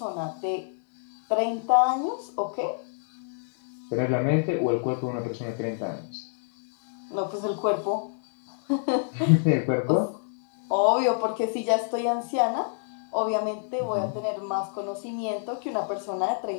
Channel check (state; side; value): silent; right; digital silence